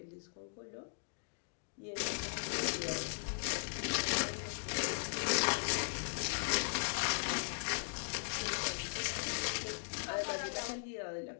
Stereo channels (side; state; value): right; silent; digital silence